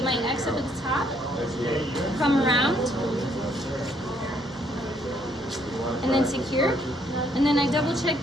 my X up at the top, come around, and then secure. And then I double check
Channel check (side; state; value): right; noise; hum, 26 dB below the sound